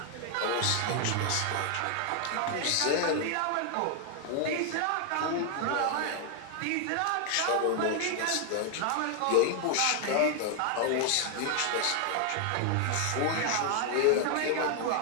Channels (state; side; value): different; both; correlation 0.00